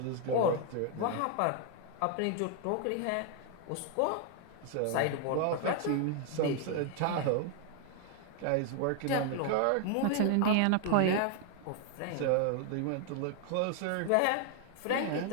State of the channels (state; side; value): different; both; correlation 0.00